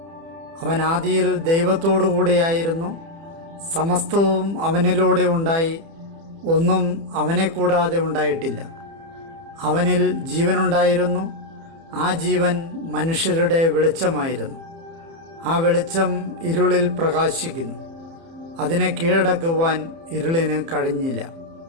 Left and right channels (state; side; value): late; left; 30 ms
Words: അവൻ ആദിയിൽ ദൈവത്തോടു കൂടിയായിരുന്നു. സമസ്തവും അവനിലൂടെ ഉണ്ടായി, ഒന്നും അവനെ കൂടാതെ ഉണ്ടായിട്ടില്ല. അവനിൽ ജീവനുണ്ടായിരുന്നു, ആ ജീവൻ മനുഷ്യരുടെ വെളിച്ചമായിരുന്നു. ആ വെളിച്ചം ഇരുളിൽ പ്രകാശിക്കുന്നു, അതിനെ കീഴടക്കുവാൻ ഇരുളിന് കഴിഞ്ഞില്ല.